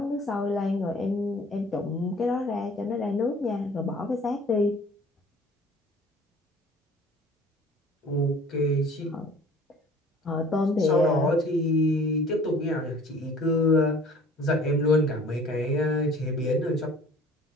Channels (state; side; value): normal; both; correlation 0.50